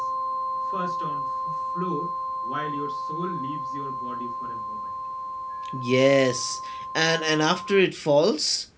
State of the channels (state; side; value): identical; both; correlation 1.00